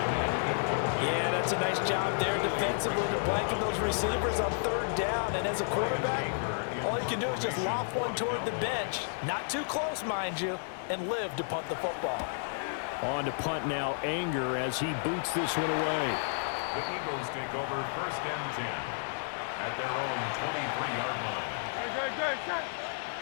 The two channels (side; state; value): right; silent; digital silence